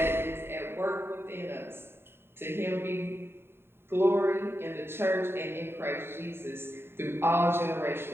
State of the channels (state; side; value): late; left; 0.11 ms